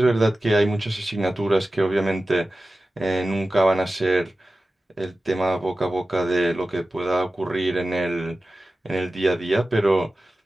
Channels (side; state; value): both; normal; correlation 0.95